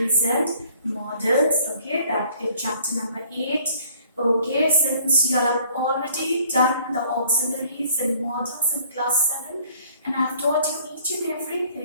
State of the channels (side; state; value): both; inverted; correlation -0.57